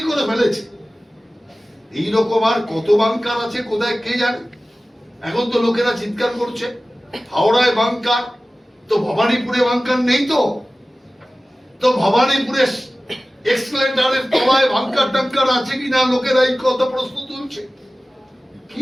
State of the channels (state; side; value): normal; both; correlation 0.97